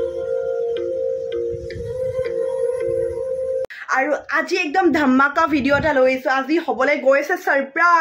আৰু আজি একদম ধামাকা ভিডিও এটা লৈছো আজি হবলে গৈছে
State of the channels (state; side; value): identical; both; correlation 1.00